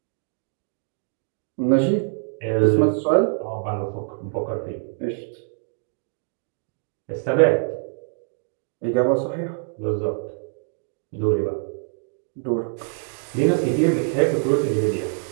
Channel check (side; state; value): left; silent; 62 dB below the other